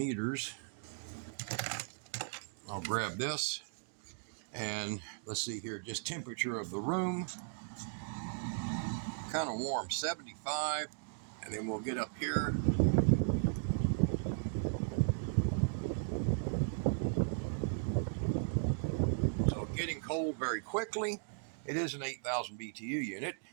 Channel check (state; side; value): silent; left; digital silence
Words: I'll grab this. And let's see here, just temperature of the room. Kind of warm, 75. And then we'll get up here. So getting cold very quickly. It is an 8,000 BTU unit,